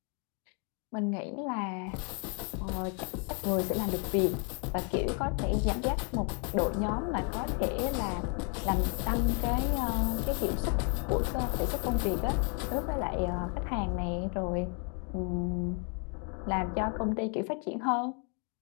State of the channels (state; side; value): quieter; right; 38.0 dB